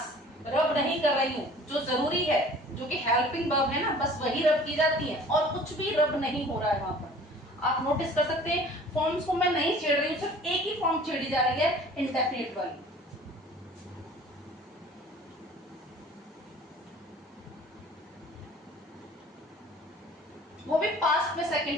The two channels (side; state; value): both; normal; correlation 0.48